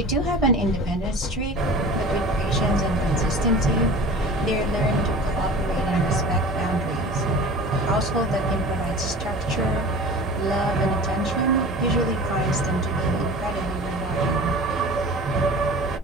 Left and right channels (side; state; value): both; normal; correlation 0.39